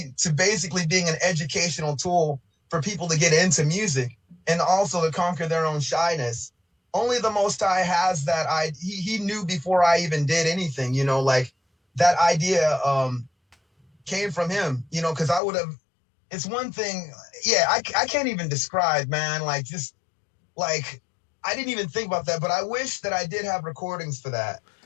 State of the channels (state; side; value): drops out; right; at 15.4 s